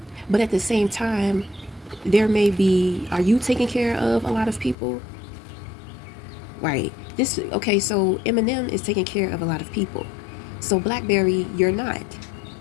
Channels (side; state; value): right; drops out; at 4.8 s